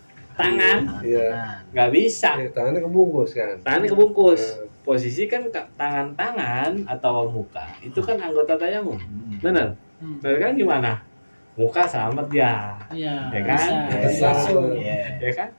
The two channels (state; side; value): inverted; both; correlation -1.00